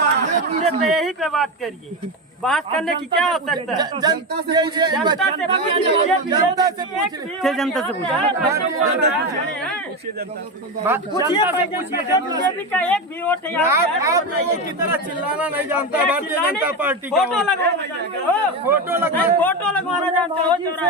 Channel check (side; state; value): both; normal; correlation 0.16